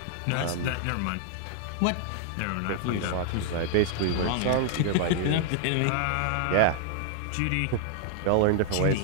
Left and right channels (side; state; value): both; different; correlation -0.01